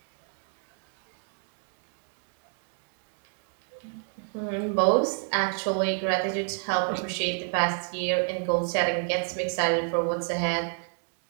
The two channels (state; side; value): silent; left; 58 dB below the other